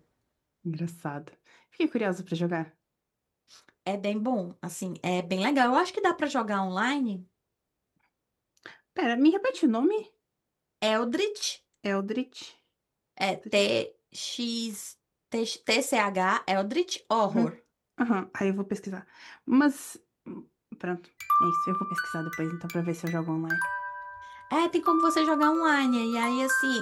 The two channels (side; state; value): both; identical; correlation 1.00